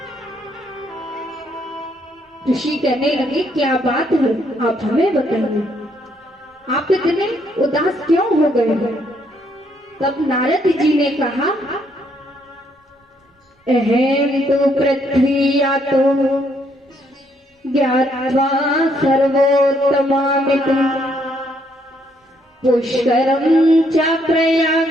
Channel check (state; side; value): normal; both; correlation 0.71